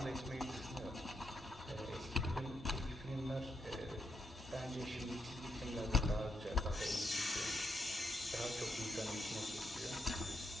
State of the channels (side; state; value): both; normal; correlation 0.80